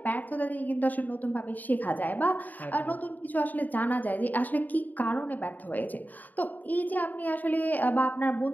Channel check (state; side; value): late; right; 0.083 ms